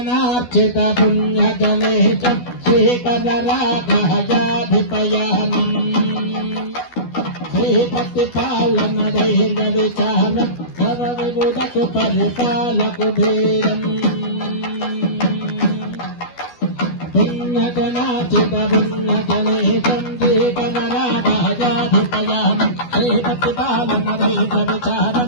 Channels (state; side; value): late; right; 12 ms